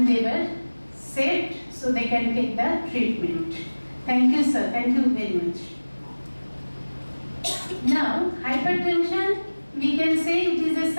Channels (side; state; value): both; inverted; correlation -1.00